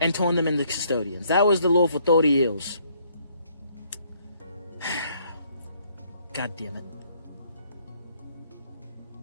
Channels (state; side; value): inverted; both; correlation -0.67